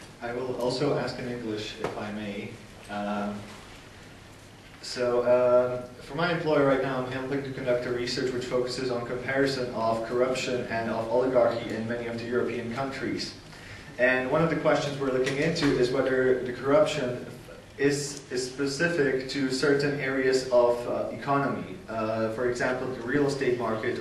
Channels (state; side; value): identical; both; correlation 1.00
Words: I will also ask in English, if I may. For my employer right now, I'm helping to conduct a research which focuses on comparison of corruption and of oligarchy in many of the European countries. And one of the questions we're looking into is whether the corruption is specific to certain areas of economy. For example, the real estate